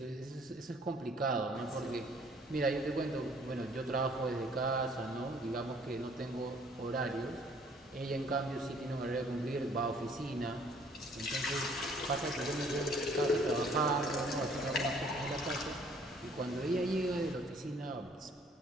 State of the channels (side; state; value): both; normal; correlation 0.59